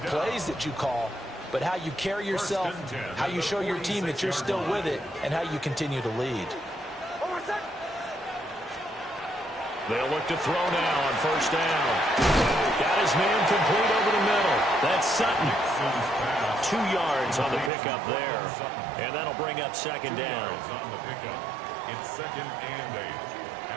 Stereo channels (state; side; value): drops out; left; at 17.7 s